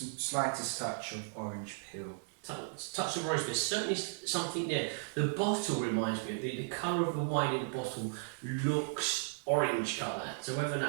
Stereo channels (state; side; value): silent; left; digital silence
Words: touch of orange peel. touch of orange, there's certainly something there. The bottle reminds me of the colour of the wine in the bottle looks orange colour. So whether or